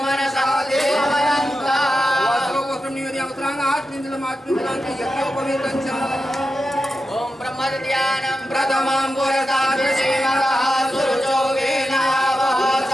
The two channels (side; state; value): both; normal; correlation 0.90